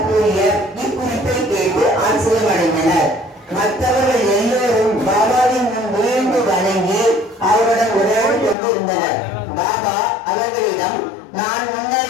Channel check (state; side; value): drops out; right; at 8.6 s